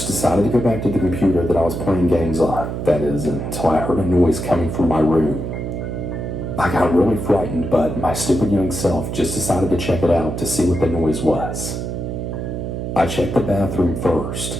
decided to go back to the computer that I was playing games on, that is, until I heard a noise coming from my room. I got really frightened, but my stupid young self just decided to check it out to see what the noise was. I checked the bathroom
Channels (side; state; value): right; noise; hum, 4 dB below the sound